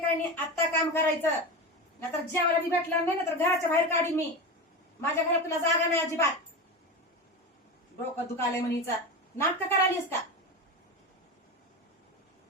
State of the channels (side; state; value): both; normal; correlation 0.23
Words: काही नाही. आत्ता काम करायचं, नाहीतर जेवायला बी भेटलं नाही, नाहीतर घराच्या बाहेर काढी मी. माझ्या घरात तुला जागा नाही अजिबात. डोकं दुखालय म्हणीचा नाटक करालीस का?